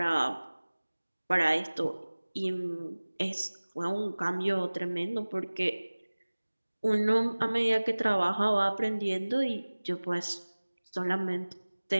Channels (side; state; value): both; inverted; correlation -1.00